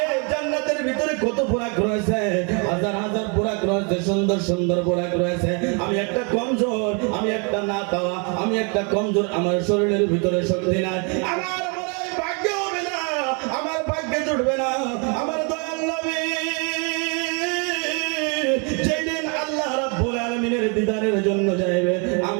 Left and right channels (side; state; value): left; quieter; 35.0 dB